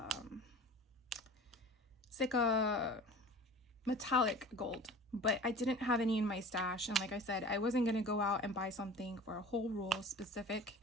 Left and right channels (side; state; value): both; normal; correlation 0.40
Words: It's like a metallic gold, but I didn't have any in my stash. And like I said, I wasn't going to go out and buy something for a whole roll specific